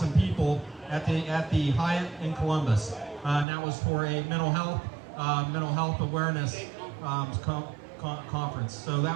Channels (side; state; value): left; drops out; at 3.5 s